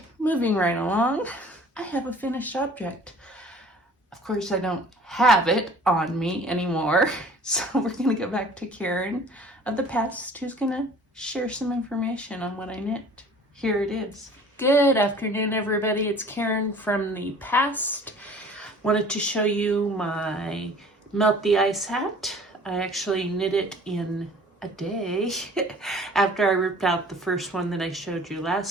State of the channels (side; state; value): both; normal; correlation 0.49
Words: moving right along. I have a finished object. Of course, I don't have it on me anymore. So we're going to go back to Karen of the past, who's going to share some information on what I knit. Here it is. Good afternoon, everybody. It's Karen from the past. Wanted to show you my Melt the Ice hat. I actually knit it in a day after I ripped out the first one that I showed you